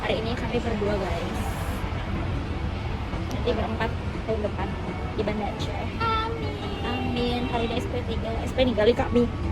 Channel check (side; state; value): both; identical; correlation 1.00